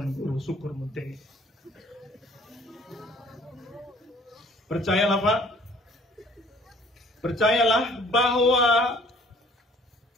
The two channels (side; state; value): both; normal; correlation 0.55